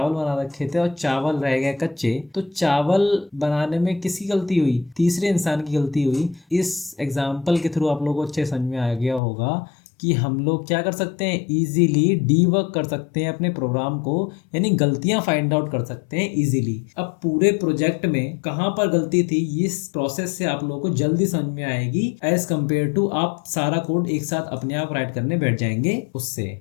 बना रखे थे और चावल रह गए कच्चे, तो चावल बनाने में किसकी गलती हुई, तीसरे इंसान की गलती हुई। इस एग्जाम्पल के थ्रू आप लोगों को अच्छे समझ में आ गया होगा कि हम लोग क्या कर सकते हैं, इजीली डीबग कर सकते हैं अपने प्रोग्राम को, यानी गलतियां फाइंड आउट कर सकते हैं इजीली। अब पूरे प्रोजेक्ट में कहां पर गलती थी इस प्रोसेस से आप लोगों को जल्दी समझ में आएगी एज कम्पेयर टू आप सारा कोड एक साथ अपने आप राइट करने बैठ जाएंगे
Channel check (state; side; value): drops out; right; at 9.2 s